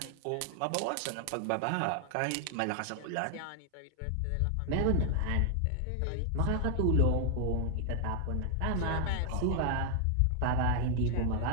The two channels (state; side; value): different; both; correlation 0.00